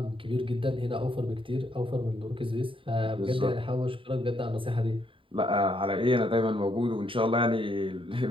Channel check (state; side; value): late; left; 0.25 ms